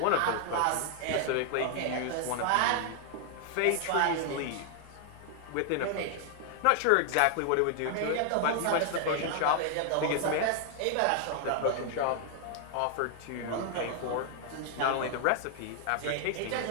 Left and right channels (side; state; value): both; different; correlation 0.00